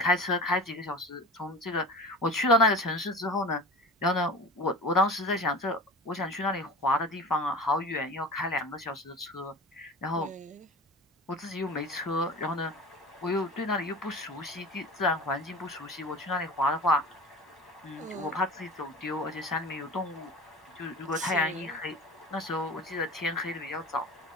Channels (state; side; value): normal; both; correlation 0.34